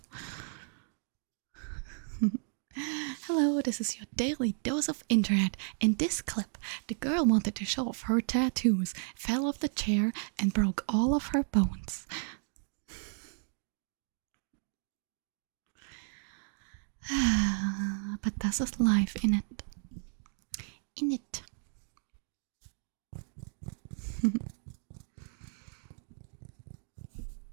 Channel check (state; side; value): silent; left; 55 dB below the other